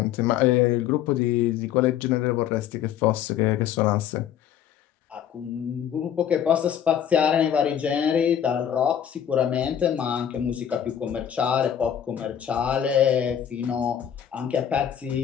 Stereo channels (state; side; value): quieter; right; 9.4 dB